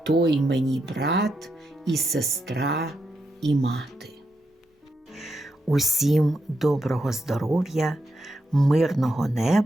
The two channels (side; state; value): both; normal; correlation 0.83